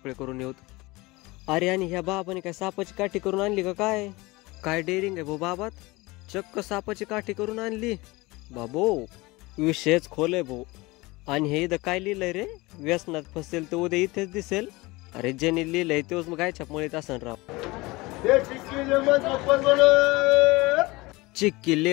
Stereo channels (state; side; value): quieter; right; 22.4 dB